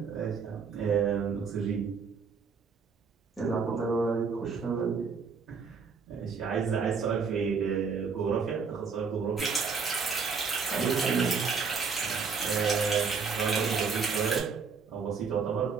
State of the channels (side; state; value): left; quieter; 5.4 dB